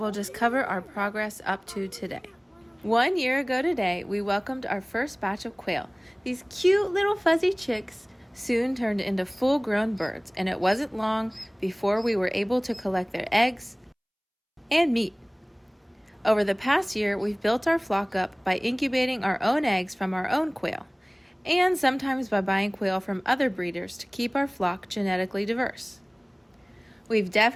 just cover our progress up to today. 1 year ago today, we welcomed our first batch of quail. These cute little fuzzy chicks soon turned into full-grown birds, and it wasn't long before we were able to collect their eggs and meat. Over the past year, we've built our flock up by incubating our own eggs from our own quail, and sometimes by buying quail from other breeders to keep our flock genetically diverse. We've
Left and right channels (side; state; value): both; identical; correlation 1.00